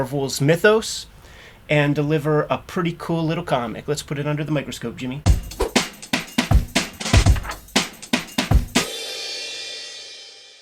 mythos and deliver a pretty cool little comic. Let's put it under the microscope, Jimmy.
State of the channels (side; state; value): both; identical; correlation 1.00